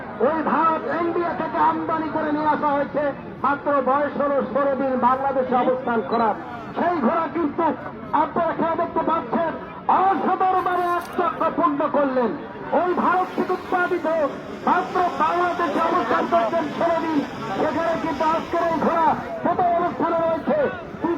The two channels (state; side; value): identical; both; correlation 1.00